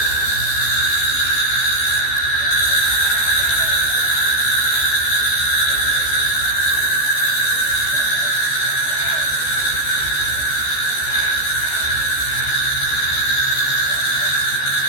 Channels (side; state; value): right; late; 14 ms